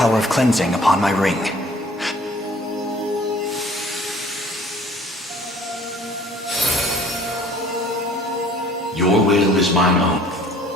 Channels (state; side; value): normal; both; correlation 0.53